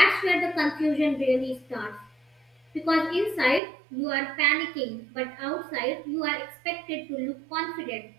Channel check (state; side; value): drops out; left; at 3.6 s